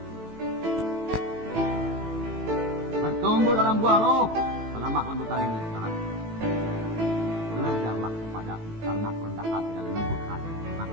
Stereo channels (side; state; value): left; late; 18 ms